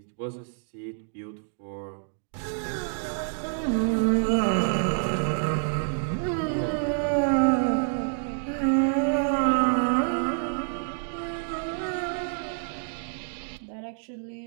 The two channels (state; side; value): silent; left; digital silence